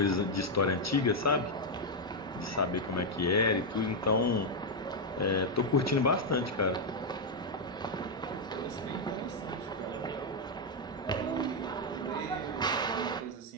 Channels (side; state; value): both; normal; correlation 0.01